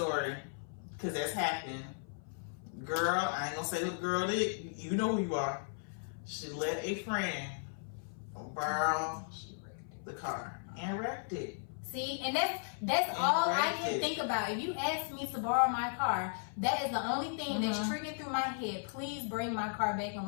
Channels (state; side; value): silent; right; 54 dB below the other